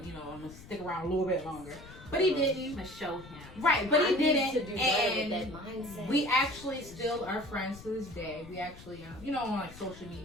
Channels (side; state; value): left; noise; rumble, 17 dB below the sound